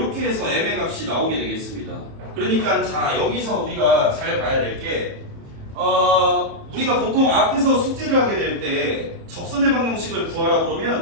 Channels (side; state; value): left; late; 31 ms